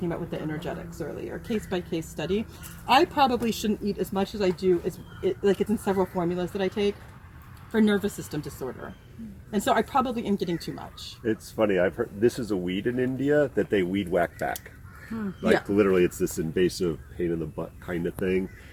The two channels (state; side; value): identical; both; correlation 1.00